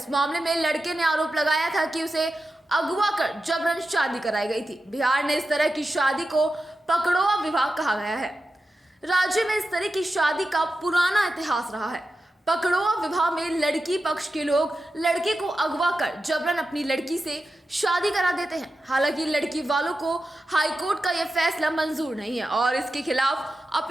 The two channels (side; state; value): both; normal; correlation 0.91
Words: मामले में लड़के ने आरोप लगाया था कि उसे अगवा कर जबरन शादी कराई गई थी। बिहार ने इस तरह की शादी को पकड़ोआ विवाह कहा गया है। राज्य में इस तरह की शादी का पुराना इतिहास रहा है। पकड़ोआ विवाह में लड़की पक्ष के लोग लड़के को अगवा कर जबरन अपनी लड़की से शादी करा देते हैं। हालांकि लड़की वालों को हाईकोर्ट का यह फैसला मंजूर नहीं है और इसके खिलाफ